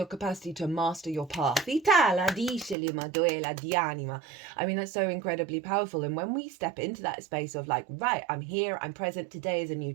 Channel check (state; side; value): drops out; left; at 2.8 s